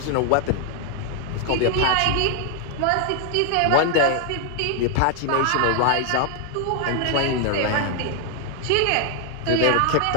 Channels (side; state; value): both; different; correlation 0.00